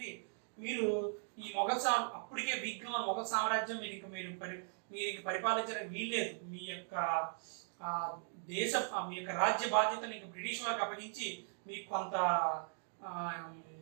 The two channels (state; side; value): silent; left; digital silence